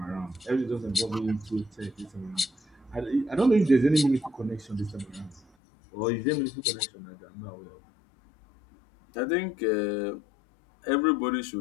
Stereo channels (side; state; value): right; drops out; at 5.4 s